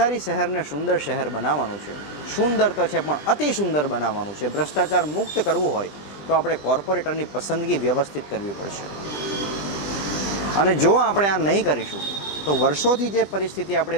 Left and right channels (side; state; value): right; late; 20 ms